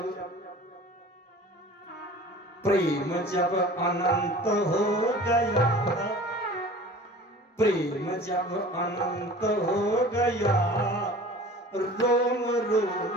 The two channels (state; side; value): normal; both; correlation 0.42